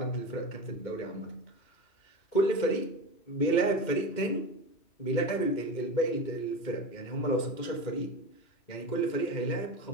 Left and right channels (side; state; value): right; late; 2.2 ms